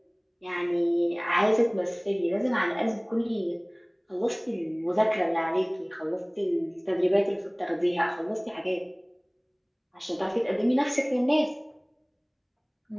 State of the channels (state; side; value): identical; both; correlation 1.00